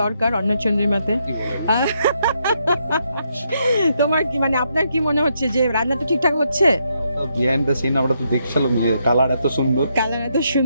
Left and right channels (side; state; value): both; inverted; correlation -0.78